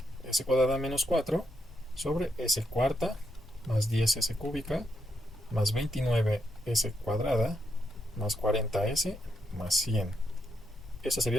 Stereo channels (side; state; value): both; normal; correlation 0.80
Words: S cuadrada menos 4 sobre S cuarta más 10S cúbica más 29S cuadrada más 40S más 100. Esa